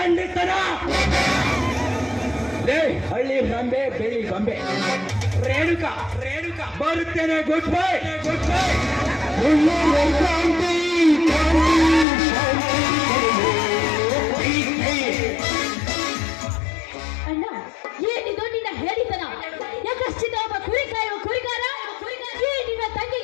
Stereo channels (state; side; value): drops out; right; at 12.1 s